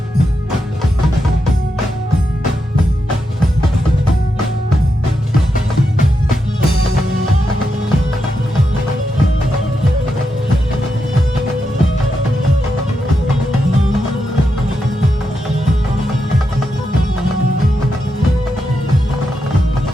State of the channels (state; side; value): normal; both; correlation 0.85